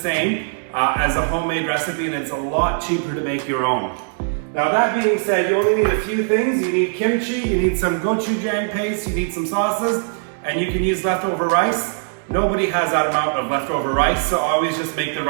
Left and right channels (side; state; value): left; silent; digital silence